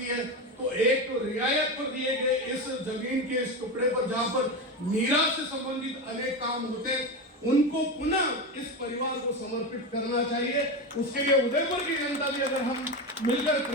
है तो एक तो रियायत पर दिए गए इस जमीन के इस टुकड़े पर जहां पर मीरा से संबंधित अनेक काम होते उनको पुनः इस परिवार को समर्पित करना चाहिए। उसके लिए उदयपुर की जनता भी अगर हम मिलकर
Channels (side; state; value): both; normal; correlation 0.19